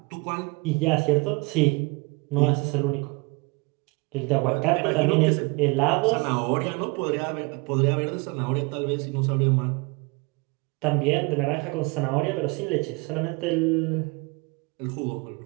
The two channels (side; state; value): left; quieter; 27.9 dB